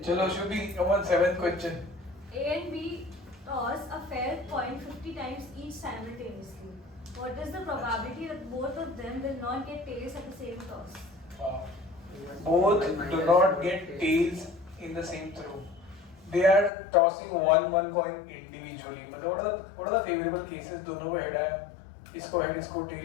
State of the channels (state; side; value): drops out; right; at 16.7 s